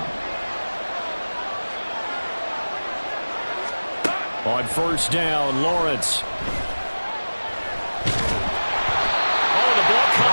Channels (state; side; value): inverted; both; correlation -1.00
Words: On first down, Lawrence. Oh, the ball